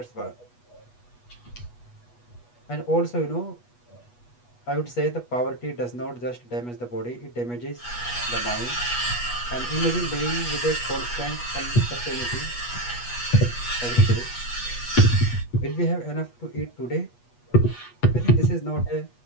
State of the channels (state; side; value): late; right; 8.3 ms